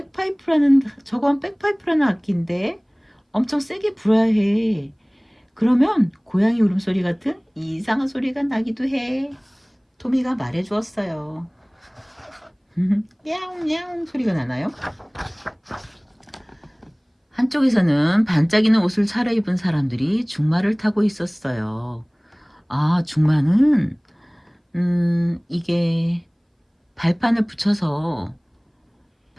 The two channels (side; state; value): both; identical; correlation 1.00